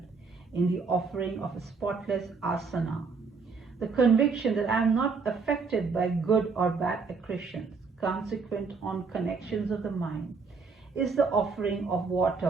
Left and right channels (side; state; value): left; quieter; 4.8 dB